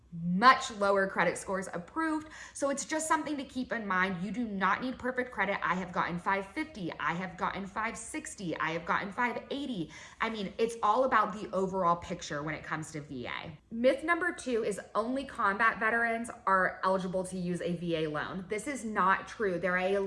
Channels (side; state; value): both; identical; correlation 1.00